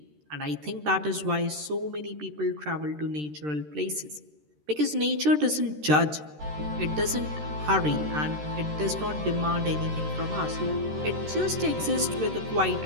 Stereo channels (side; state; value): left; late; 13 ms